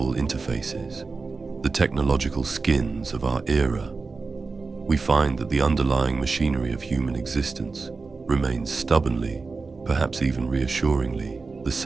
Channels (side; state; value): left; quieter; 4.2 dB